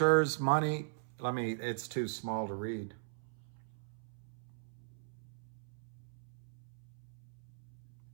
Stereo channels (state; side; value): silent; left; 52 dB below the other